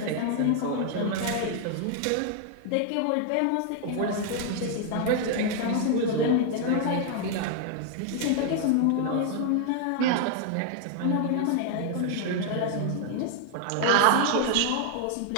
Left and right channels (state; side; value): different; both; correlation 0.00